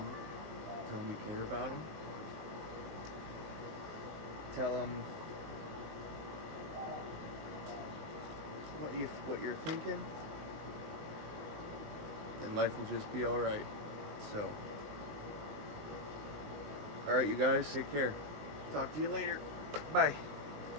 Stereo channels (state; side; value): late; left; 20 ms